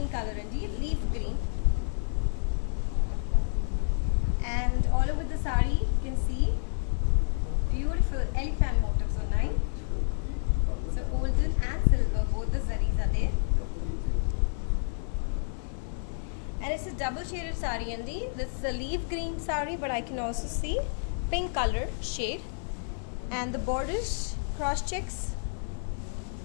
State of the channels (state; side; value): silent; right; digital silence